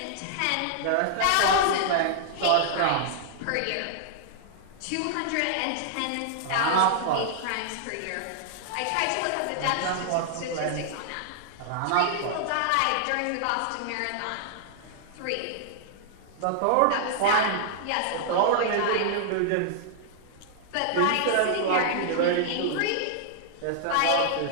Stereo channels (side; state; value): both; different; correlation -0.01